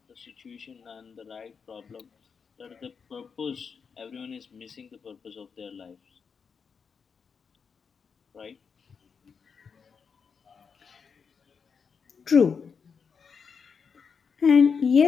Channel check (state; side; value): quieter; right; 6.0 dB